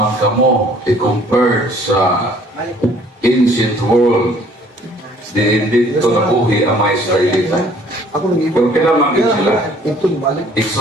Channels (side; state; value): both; normal; correlation 0.57